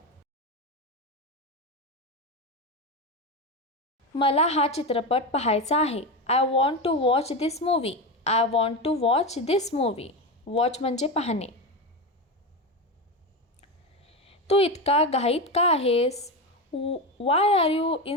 मला हा चित्रपट पाहायचा आहे. I want to watch this movie. I want to watch this movie. Watch म्हणजे पाहणे. तू इतका घाईत का आहेस? Why are you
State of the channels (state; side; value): normal; both; correlation 0.17